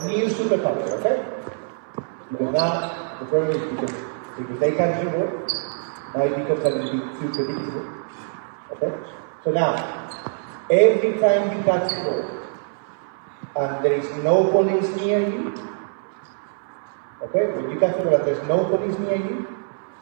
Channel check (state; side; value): silent; left; 60 dB below the other